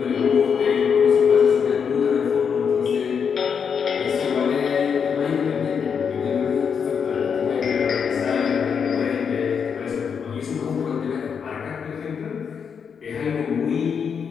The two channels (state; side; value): quieter; right; 6.7 dB